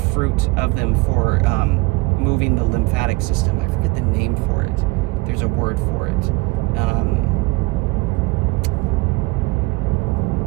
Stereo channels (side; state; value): left; quieter; 24.5 dB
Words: of them for moving the lymphatic system. I forget the name for it. There's a word for it. I'll